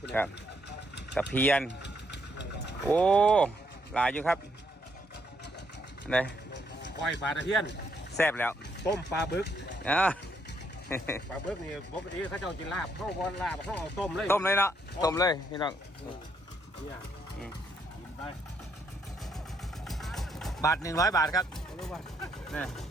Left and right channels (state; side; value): normal; both; correlation 0.73